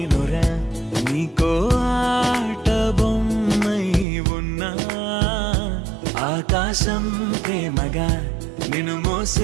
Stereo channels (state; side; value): drops out; left; at 4.0 s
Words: నీకో ఆట బొమ్మై ఉన్నా ఆకాశం ప్రేమగా నిన్ను